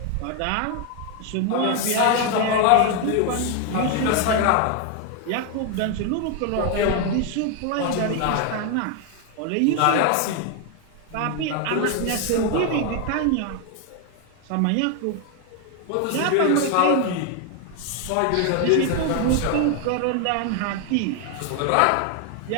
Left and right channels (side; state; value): both; different; correlation 0.01